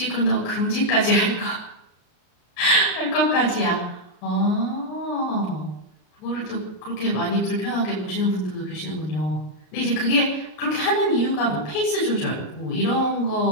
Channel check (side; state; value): right; late; 33 ms